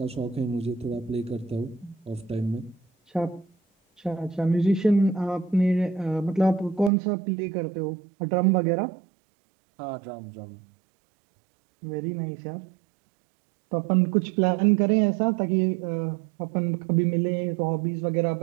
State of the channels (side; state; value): left; drops out; at 6.9 s